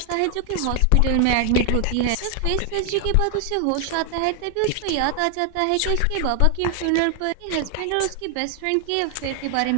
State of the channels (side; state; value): both; different; correlation 0.00